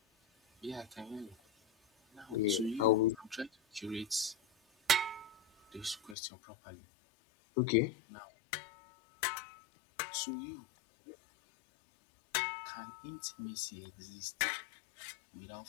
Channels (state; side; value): drops out; right; at 6.2 s